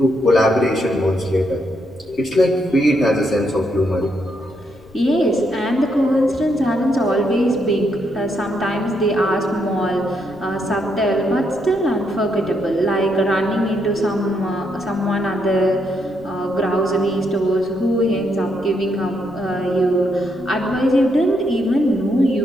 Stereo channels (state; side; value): noise; left; rumble, 25 dB below the sound